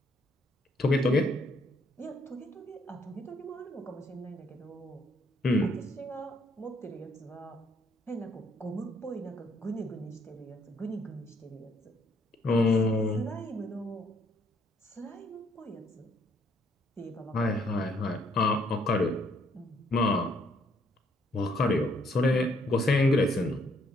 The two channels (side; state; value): both; normal; correlation 0.68